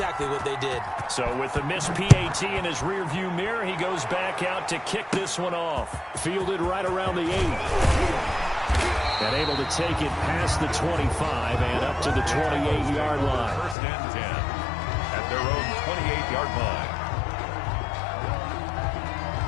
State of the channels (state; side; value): drops out; right; at 13.8 s